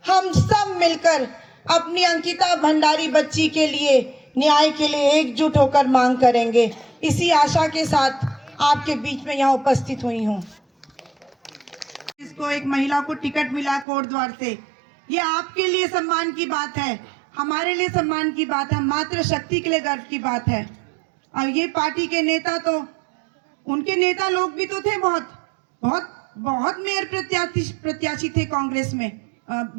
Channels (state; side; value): drops out; left; at 13.9 s